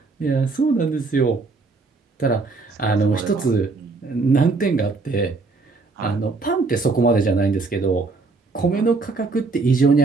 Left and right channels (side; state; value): left; quieter; 3.9 dB